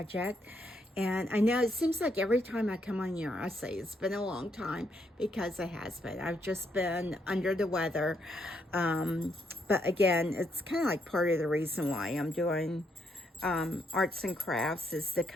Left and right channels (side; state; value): both; normal; correlation 0.76